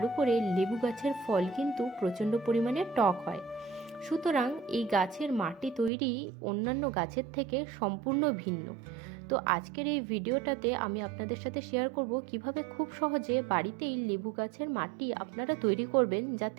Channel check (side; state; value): left; drops out; at 5.9 s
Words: উপরে লেবু গাছের ফল কিন্তু প্রচণ্ড পরিমাণে টক হয়। সুতরাং এই গাছের মাটি তৈরি অন্যান্য গাছের থেকে সম্পূর্ণ ভিন্ন। তো আজকের এই ভিডিওটাতে আমি আপনাদের সাথে শেয়ার করব কিভাবে খুব সহজে বাড়িতেই লেবু গাছের মাটি আপনারা তৈরি করবেন,